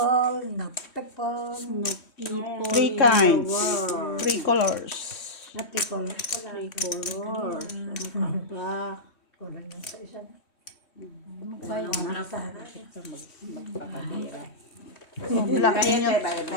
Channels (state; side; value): late; right; 3.1 ms